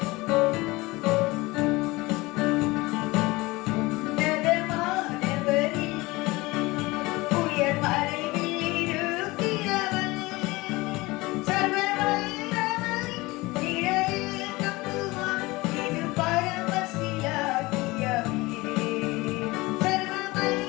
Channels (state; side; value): quieter; right; 21.7 dB